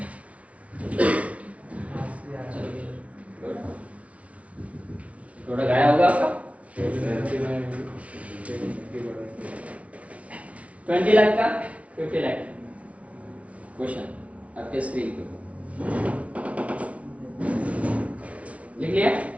थोड़ा गाया होगा आपका 20 लाख का 50 लाख क्वेश्चन आपके स्क्रीन पे लिख लिया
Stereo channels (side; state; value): left; late; 0.065 ms